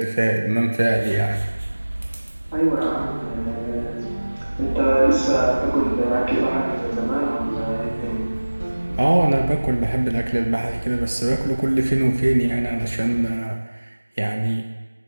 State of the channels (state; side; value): inverted; both; correlation -1.00